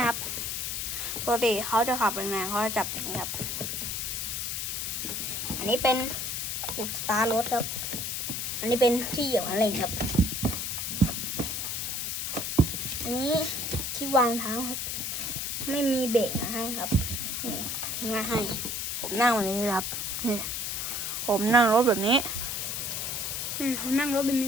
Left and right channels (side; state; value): left; noise; hiss, 2 dB below the sound